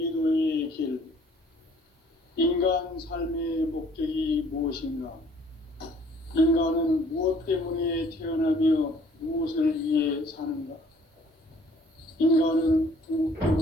길. 인간 삶의 목적이 무엇인가? 인간은 무엇 때문에 태어나며 무엇을 위해 사는가? 인간은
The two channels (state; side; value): normal; both; correlation 0.58